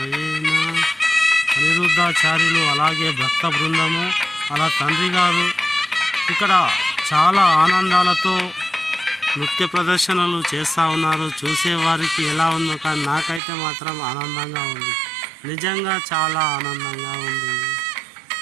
అనిరుద్ధాచార్యులు అలాగే భక్త బృందము అలా తండ్రి గారు ఇక్కడ చాలా ఆనందాలతో నృత్య ప్రదర్శనలు చేస్తూ ఉన్నారు. చూసేవారికి ఎలా ఉందో కానీ నాకైతే మాత్రం ఆనందంగా ఉంది, నిజంగా చాలా ఆనందంగా ఉంది.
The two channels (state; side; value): drops out; left; at 13.4 s